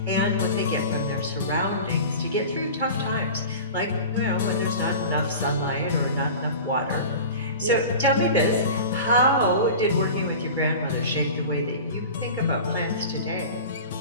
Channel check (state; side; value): inverted; both; correlation -0.35